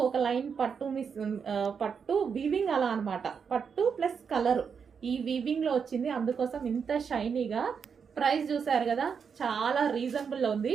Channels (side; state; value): left; quieter; 6.4 dB